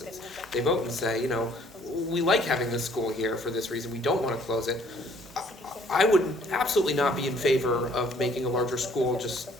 They vote and say, we like having this school here for this reason, we don't want to close it. I would absolutely not be in favor of making a larger school just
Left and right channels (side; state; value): both; normal; correlation 0.60